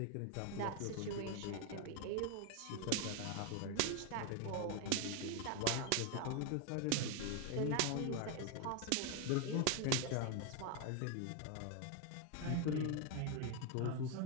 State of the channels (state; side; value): different; both; correlation 0.01